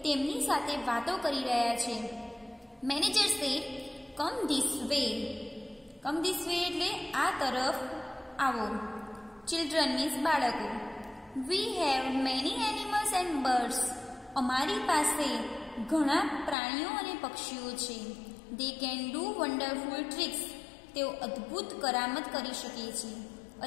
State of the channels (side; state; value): right; drops out; at 16.6 s